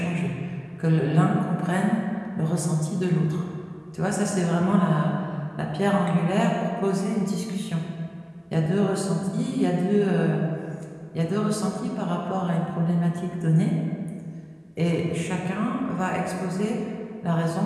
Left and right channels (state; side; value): identical; both; correlation 1.00